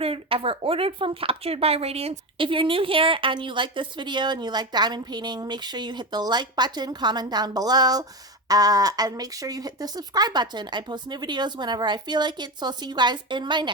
ever ordered from Captured by Radiance. If you're new here and you like this video and you like diamond painting, make sure you hit the like button, comment down below, and make sure you hit the subscribe button. I post new videos whenever I feel like it, so I'll see you guys in my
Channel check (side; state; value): both; normal; correlation 0.19